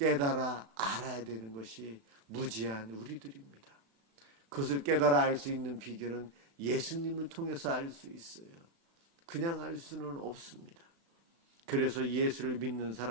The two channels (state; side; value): late; left; 36 ms